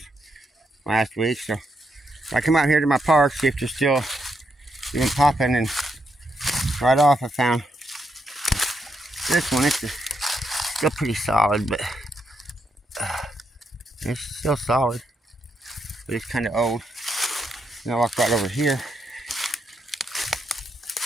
last week. So I come out here to my park, see if they're still even popping, and right off I found this one. It's still pretty solid, but it's still solid, but it's kind of old. And I walk right over here.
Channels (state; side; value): normal; both; correlation 0.80